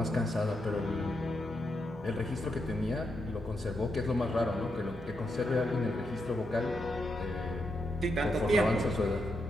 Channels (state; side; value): noise; left; hum, 18 dB below the sound